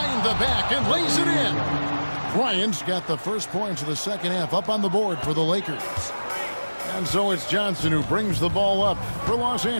the back and lays it in. Bryant's got the first points of the second half up on the board for the Lakers. And so it's Johnson who brings the ball up for Los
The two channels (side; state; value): both; inverted; correlation -1.00